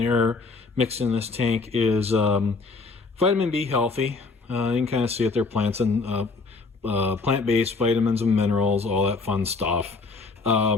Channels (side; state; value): right; quieter; 4.0 dB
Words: mixed in this tank is Vitamin B Healthy. You can kind of see it, they're plants and plant-based vitamins and minerals, all that fun stuff.